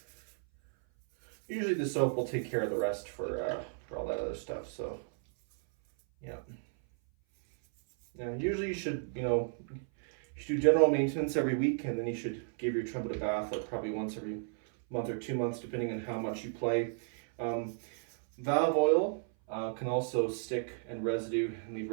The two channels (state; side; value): silent; left; 55 dB below the other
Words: Usually the soap will take care of the rest for all that other stuff. So, yeah. Now, usually you should, you should do general maintenance every week, and then you should give your trumpet a bath like probably once every month or 2 months, depending on how much you play. Valve oil can also stick and leave